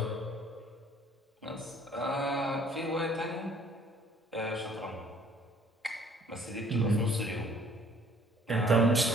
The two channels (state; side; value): normal; both; correlation 0.57